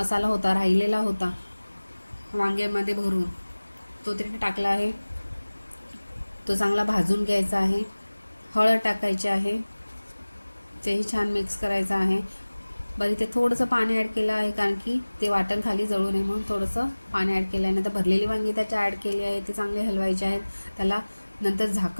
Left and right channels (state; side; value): inverted; both; correlation -1.00